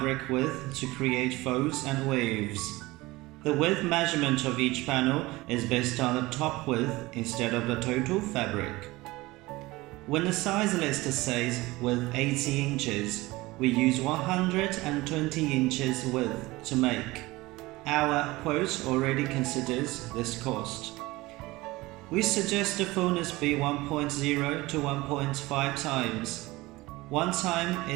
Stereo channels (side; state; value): left; quieter; 20.3 dB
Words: width to create folds and waves. The width measurement of each panel is based on the top width instead of the total fabric. When the size list says width 80 inches, we use 120 inches width to make. Our quote already considers this cost. We suggest the fullness be 1.0 to 1.5 times. 1 time